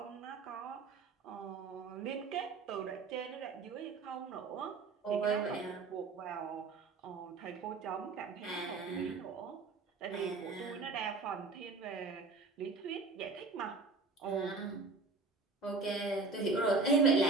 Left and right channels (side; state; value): left; quieter; 4.0 dB